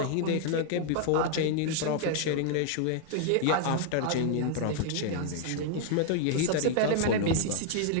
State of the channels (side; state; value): both; different; correlation 0.00